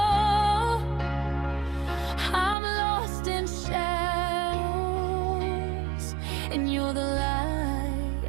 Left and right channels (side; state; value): left; drops out; at 2.6 s